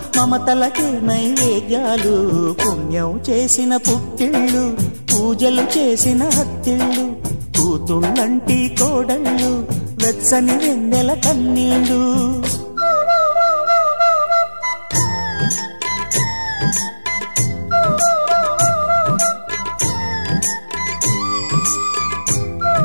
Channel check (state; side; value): inverted; both; correlation -1.00